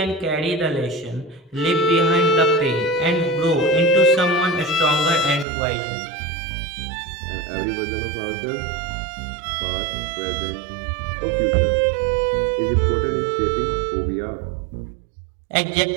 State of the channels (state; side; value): drops out; left; at 5.5 s